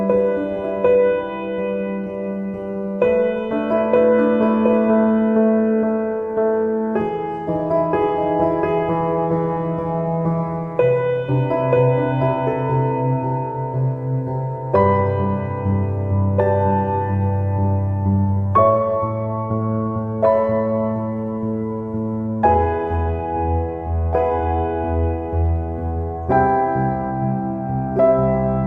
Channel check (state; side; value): identical; both; correlation 1.00